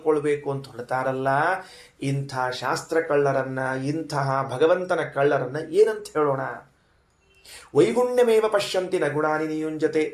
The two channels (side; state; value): both; identical; correlation 1.00